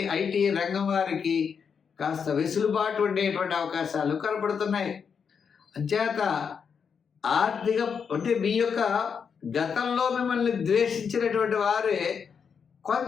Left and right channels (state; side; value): quieter; right; 6.5 dB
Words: ఐటీ రంగం వారికి కాస్త వెసులుబాటు ఉండేటువంటి అవకాశాలు కనపడుతున్నాయి. అంచేత ఆర్థిక అంటే మీ యొక్క గతంలో మిమ్మల్ని ద్వేషించినటువంటి వారే